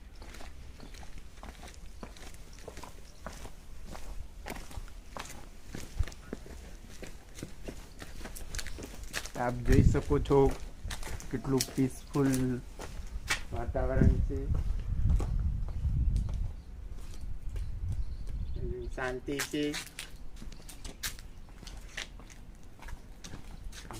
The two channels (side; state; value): both; identical; correlation 1.00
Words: આપ જોઈ શકો છો કેટલું પીસફુલ વાતાવરણ છે, શાંતિ છે.